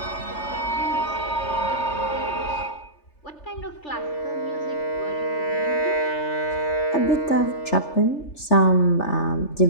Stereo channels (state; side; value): late; right; 3.3 ms